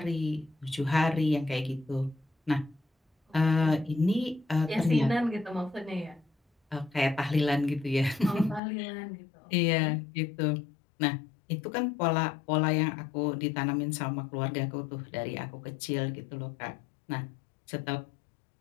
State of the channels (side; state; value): right; drops out; at 8.6 s